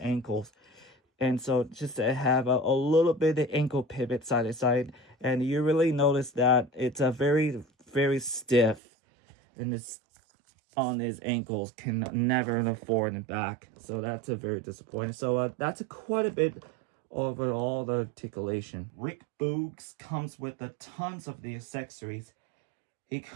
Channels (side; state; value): left; drops out; at 8.8 s